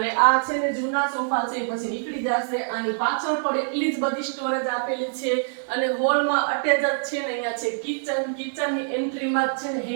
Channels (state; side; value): silent; left; digital silence